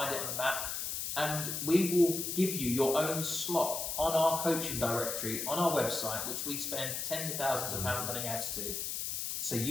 it on the map. And we will give you your own slot on our coaching directory on our website, which we spend tens of thousands of pounds running ads to. So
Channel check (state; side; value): noise; left; hiss, 3 dB below the sound